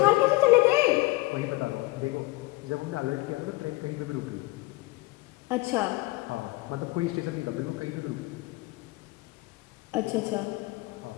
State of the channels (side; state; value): right; quieter; 21.3 dB